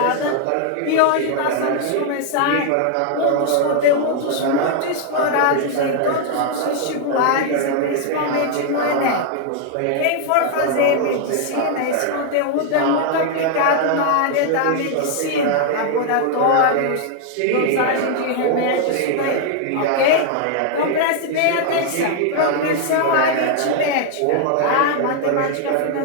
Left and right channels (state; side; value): different; both; correlation 0.00